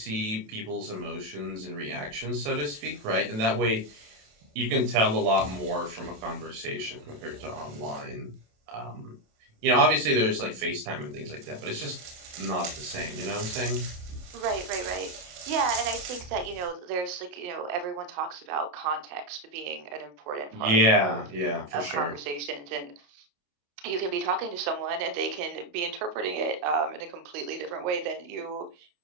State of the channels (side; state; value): left; late; 27 ms